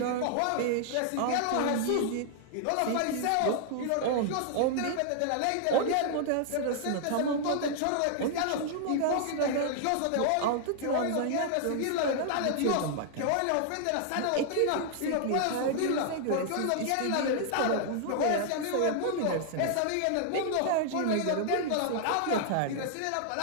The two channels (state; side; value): different; both; correlation -0.01